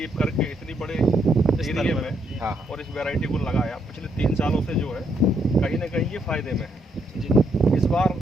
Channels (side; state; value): both; normal; correlation 0.74